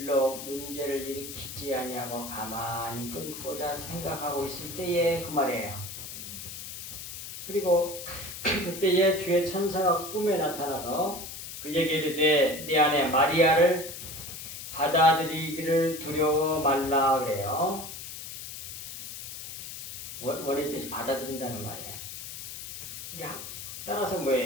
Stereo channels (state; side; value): noise; left; hiss, 9 dB below the sound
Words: 문제를 일으키지 아니하고 가만히 끊고자 생각하고 있을 때의 그 말이에요. 그리고 그때에 주의 천사가 꿈에 나타나서 그에게 이르되 네 아내 마리아를 받아들이기를 두려워 말라 그래요. 원의 뜻이 받아들인다는 말이에요. 따라서